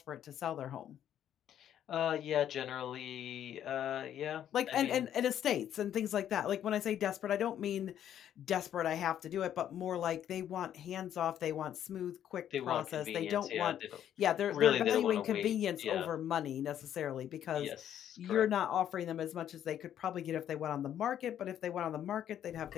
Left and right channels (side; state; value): right; quieter; 10.4 dB